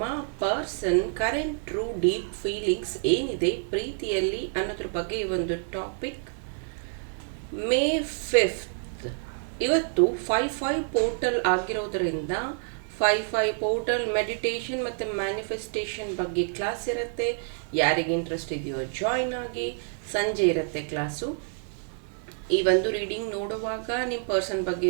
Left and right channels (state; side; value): silent; left; 60 dB below the other